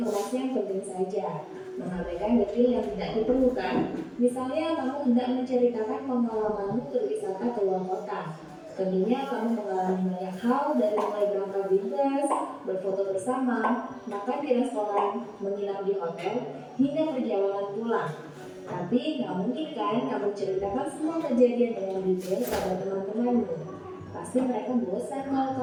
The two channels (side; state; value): both; identical; correlation 1.00